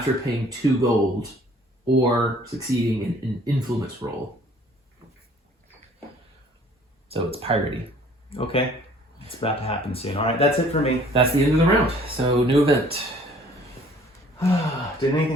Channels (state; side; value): normal; both; correlation 0.55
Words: paying 2 gold or succeeding in an influence roll. So it's piratey. Okay. It's about to happen soon. All right, that's it for me. That's the end of the round. So new event. Did